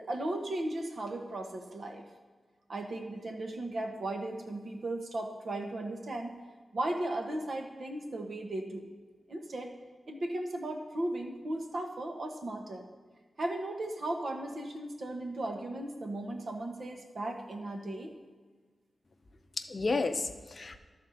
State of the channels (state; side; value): normal; both; correlation 0.90